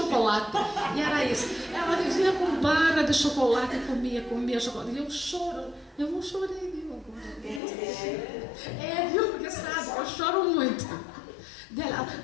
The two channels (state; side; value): drops out; right; at 7.6 s